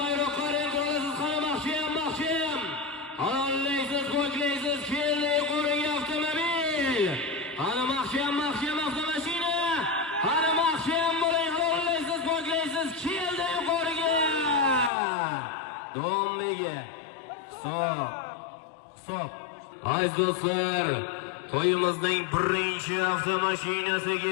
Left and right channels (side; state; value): right; drops out; at 14.9 s